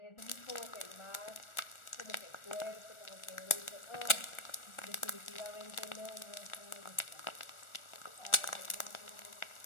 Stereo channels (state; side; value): late; right; 1.4 ms